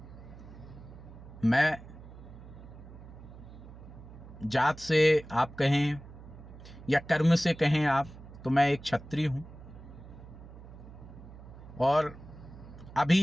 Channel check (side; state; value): right; noise; hum, 16 dB below the sound